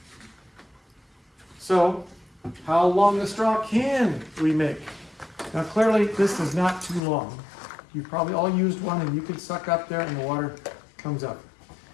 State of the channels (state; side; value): drops out; right; at 7.0 s